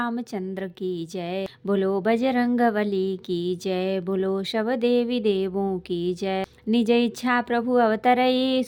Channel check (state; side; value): identical; both; correlation 1.00